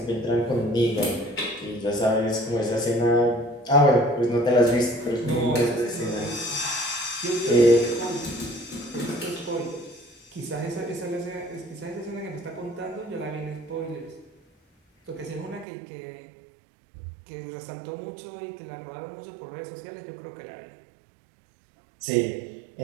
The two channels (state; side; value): drops out; left; at 15.7 s